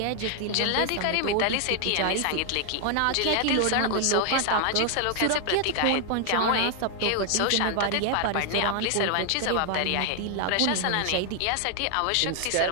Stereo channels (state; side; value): different; both; correlation 0.00